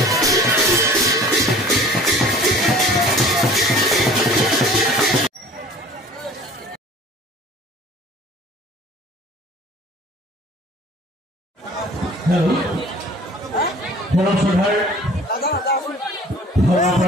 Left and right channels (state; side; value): normal; both; correlation 0.47